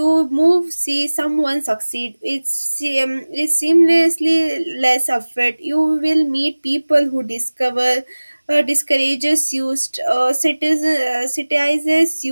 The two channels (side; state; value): both; inverted; correlation -1.00